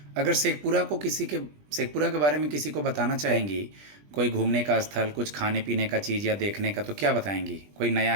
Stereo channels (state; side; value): late; left; 20 ms